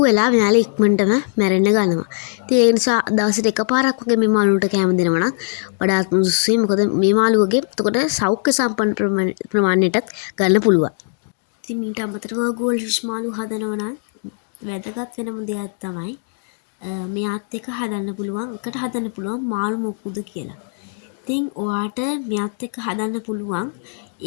වෙලා මෙයාලා ඉක්මනටම මැරෙන්න ගන්නවා. ඉතින් ඒ නිසා දවසට එකපාරක් වගේ මේ මාළුන්ට කෑම දෙනවා නම් වඩාත් සුදුසුයි. මොකද මේ මාළුවගේ එතකොට සෞඛ්‍ය සම්පන්න ප්‍රමාණයටත් ගන්න පුළුවන්. ඉතින් ඊට අමතරව ගෝල් ෆිෂ් මාළු හදනවා නම් වැදගත් වෙනම දෙයක් තමයි මෙයාත් එක්ක හදන්න පුළුවන් එකට හදන්න පුළුවන් මාළු මොකුද කියලා. ඉතින් ඔයාට මෙයාත් එක්ක හදන්න පුළුවන්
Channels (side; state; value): right; silent; digital silence